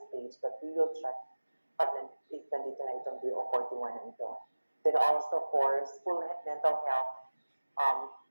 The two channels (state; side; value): inverted; both; correlation -1.00